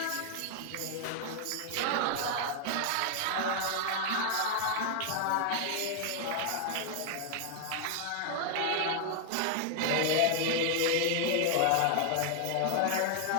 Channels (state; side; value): different; both; correlation 0.00